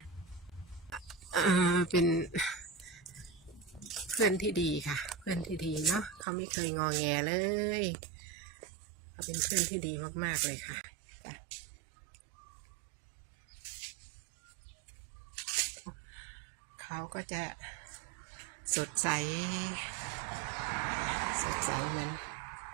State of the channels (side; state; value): left; drops out; at 6.2 s